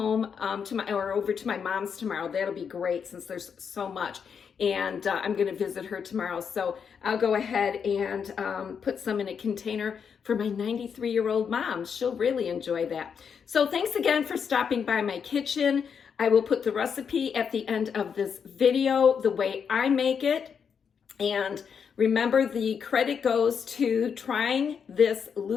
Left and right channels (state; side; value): quieter; right; 6.8 dB